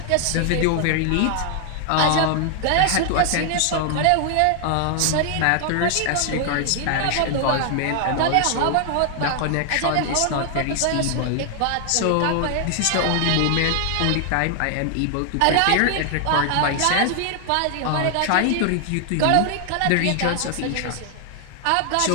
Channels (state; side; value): different; both; correlation 0.00